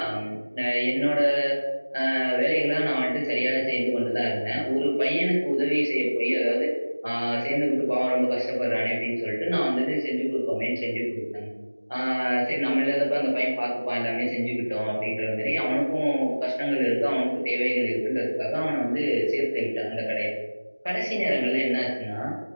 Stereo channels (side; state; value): both; inverted; correlation -1.00